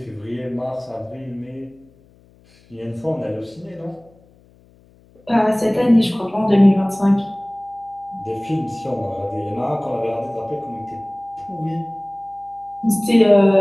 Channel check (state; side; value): noise; left; hum, 29 dB below the sound